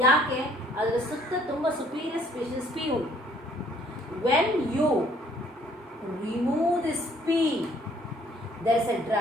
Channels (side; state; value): both; normal; correlation 0.61